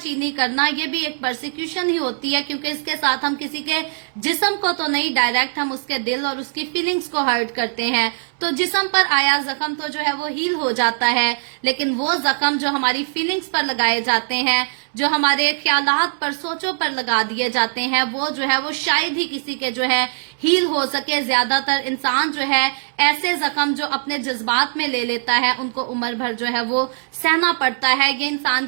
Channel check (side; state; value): left; silent; digital silence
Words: करना, ये भी एक परसिक्यूशन ही होती है, क्योंकि इसके साथ हम किसी के जिस्म को तो नहीं, डायरेक्ट हम उसके दिल और उसकी फीलिंग्स को हर्ट करते हैं। तो जिस्म पर आया जख्म तो जो है वो हील हो जाता है, लेकिन वो जख्म जो हमारी फीलिंग्स पर लगाए जाते हैं, जो हमारे ख्यालात पर, सोचों पर लगा दिए जाते हैं, वो जो है वो शायद ही किसी के जो है हील हो सके। ज्यादातर इंसान जो है ऐसे जख्म जो अपने जज्बात में ले लेता है, उनको उम्र भर जो है वो सहना पड़ता है। ये इंसान